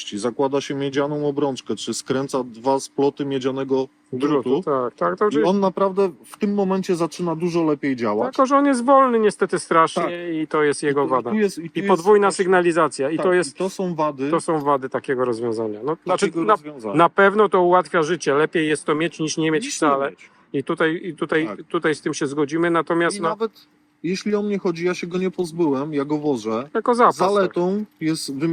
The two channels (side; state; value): both; identical; correlation 1.00